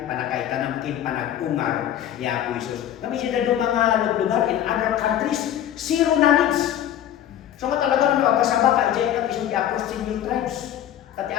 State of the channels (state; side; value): quieter; right; 11.1 dB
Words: panakaitanamkin, panagungar ni Apo Isus. Kami siya na mga lugar in other countries, zero knowledge. So nga talaga nyo agkasama ka ijay ka isang i-approach si new tribes. At